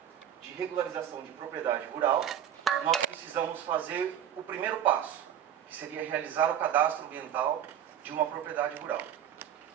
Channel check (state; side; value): quieter; left; 9.9 dB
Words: de regularização de propriedade rural, nós precisamos fazer o primeiro passo, que seria realizar o cadastro ambiental de uma propriedade rural.